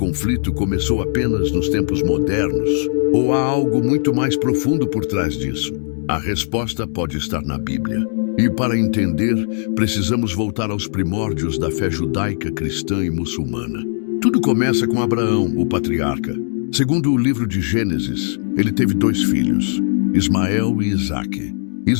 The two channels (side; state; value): right; silent; digital silence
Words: começou apenas nos tempos modernos? Ou há algo muito mais profundo por trás disso? A resposta pode estar na Bíblia. E para entender, precisamos voltar aos primórdios da fé judaica, cristã e muçulmana. Tudo começa com Abraão, o patriarca. Segundo o livro de Gênesis, ele teve 2 filhos, Ismael e Isaque.